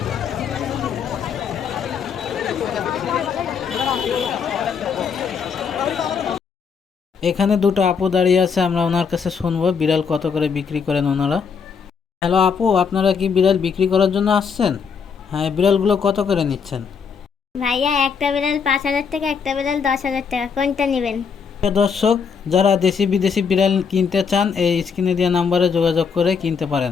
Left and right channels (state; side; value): quieter; right; 6.2 dB